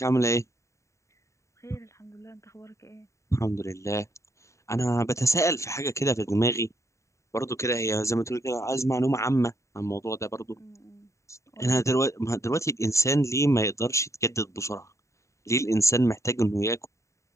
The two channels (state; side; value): late; right; 0.14 ms